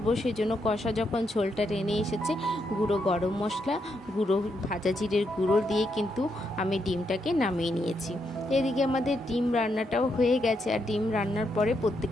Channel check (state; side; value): normal; both; correlation 0.80